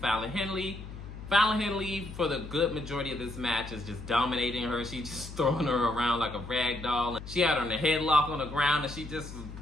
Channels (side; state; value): left; noise; hum, 12 dB below the sound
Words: Henley. Fallon Henley, for the good majority of this match, is just dominating her. She's just throwing her around like a rag doll. She had her in a headlock on the ground, and she